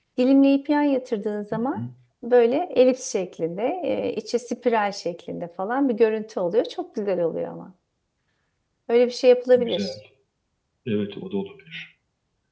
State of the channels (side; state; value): both; identical; correlation 1.00